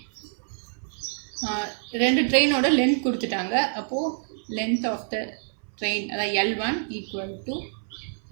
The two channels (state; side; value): silent; left; 58 dB below the other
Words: ரெண்டு ட்ரெயினோட லென்த் கொடுத்துட்டாங்க. அப்போது லென்த் ஆஃப் த ட்ரெயின் அதாவது L1 equal to